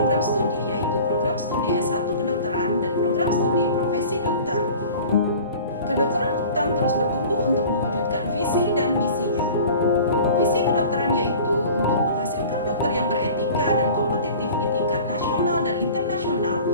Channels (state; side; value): inverted; both; correlation -0.43